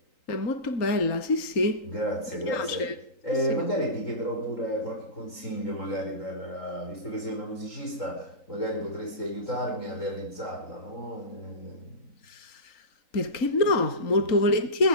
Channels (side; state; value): right; late; 3.9 ms